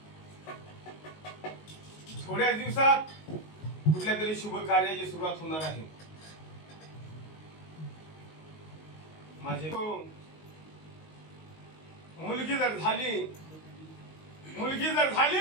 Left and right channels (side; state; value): right; late; 19 ms